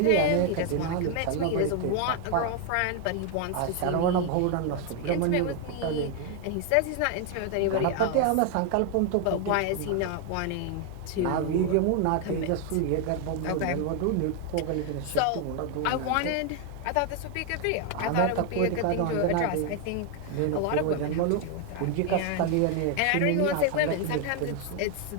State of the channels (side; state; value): both; different; correlation 0.01